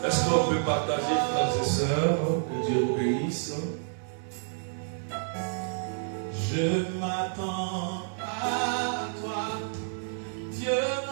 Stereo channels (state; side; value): silent; left; digital silence